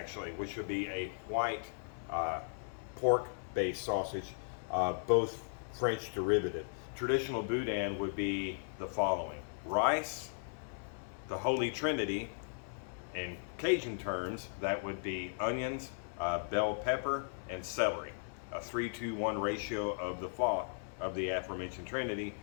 which would be a white pork-based sausage, both French derivative. Traditional boudin would be the following: rice, the Holy Trinity. In Cajun terms, that would be onions, bell pepper, and celery. A 3-to-1 ratio of the aforementioned Trinity.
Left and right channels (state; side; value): silent; right; 53 dB below the other